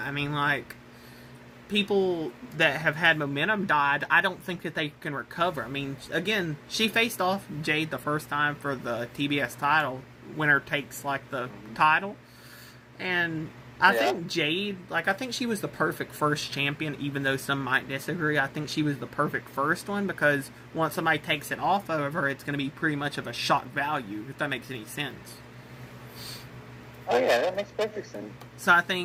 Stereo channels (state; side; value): identical; both; correlation 1.00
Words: People that have had momentum died, I don't think that they can recover. Again, she faced off Jade the first time for the TBS title. Winner takes, the title. And I think Jade, like, I think she was the perfect first champion, even though some might disagree. I think she was the perfect first one because once somebody takes it off of her, it's going to be pretty much of a shock value, if that makes any sense. Oh, yeah, that makes perfect sense. So I